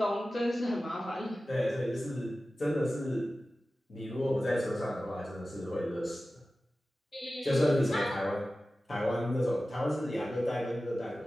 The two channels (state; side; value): normal; both; correlation 0.95